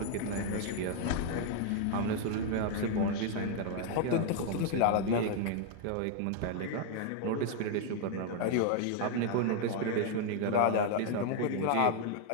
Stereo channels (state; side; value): different; both; correlation 0.00